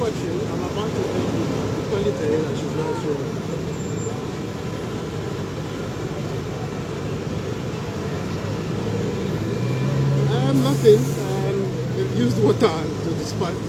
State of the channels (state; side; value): identical; both; correlation 1.00